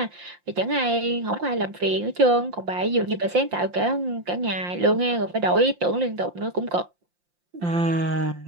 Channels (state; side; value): late; left; 5.7 ms